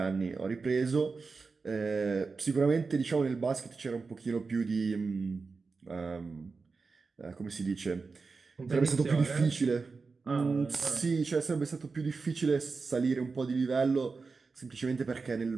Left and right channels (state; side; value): quieter; left; 4.4 dB